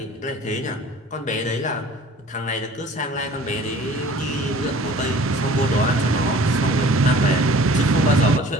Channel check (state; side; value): normal; both; correlation 0.48